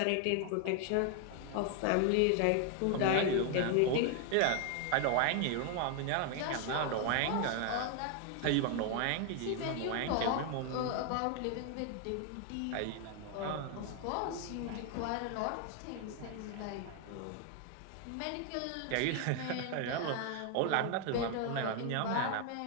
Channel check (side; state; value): both; different; correlation 0.00